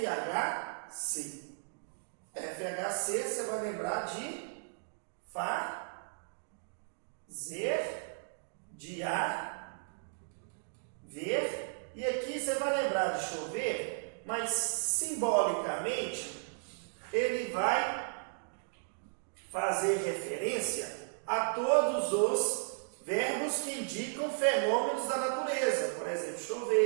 FHC, você vai lembrar de fazer, de ver. E aqui você vai lembrar de chover, mas simbolicamente ele vai fazer referência a todos os verbos que indicam fenômenos da natureza. Por exemplo,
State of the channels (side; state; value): left; silent; digital silence